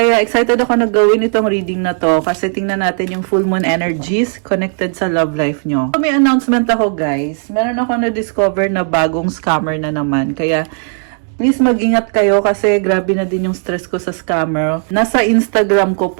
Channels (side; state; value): left; silent; 56 dB below the other